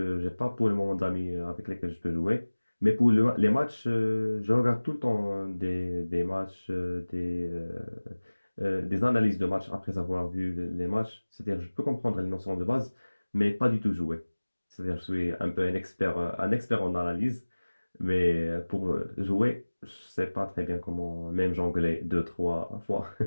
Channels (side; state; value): both; inverted; correlation -1.00